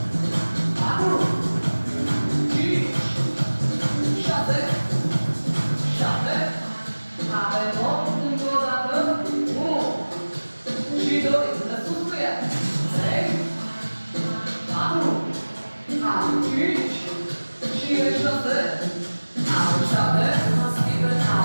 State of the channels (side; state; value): both; inverted; correlation -1.00